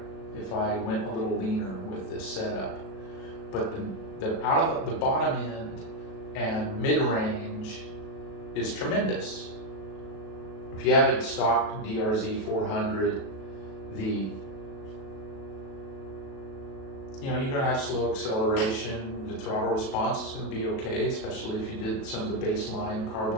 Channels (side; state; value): right; late; 37 ms